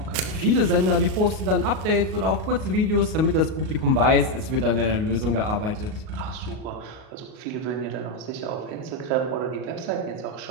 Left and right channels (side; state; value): left; late; 38 ms